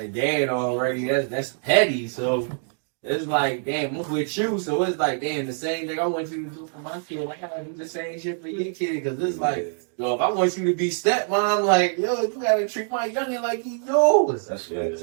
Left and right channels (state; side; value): silent; left; 62 dB below the other